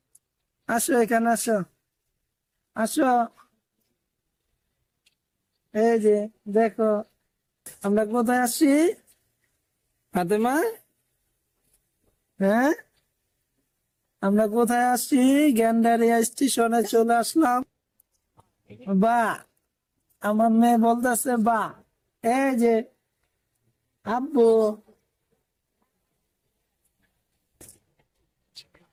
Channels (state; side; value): identical; both; correlation 1.00